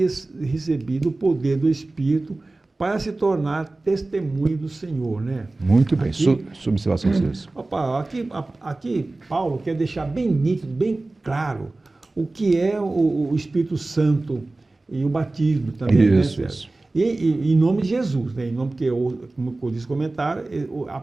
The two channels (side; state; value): left; quieter; 3.1 dB